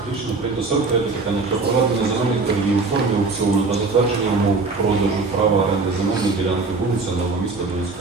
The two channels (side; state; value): left; quieter; 3.9 dB